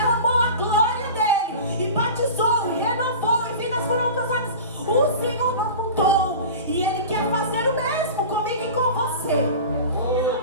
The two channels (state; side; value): inverted; both; correlation -0.34